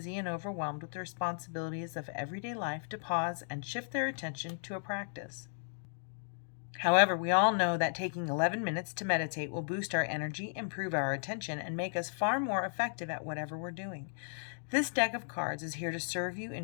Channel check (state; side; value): silent; right; digital silence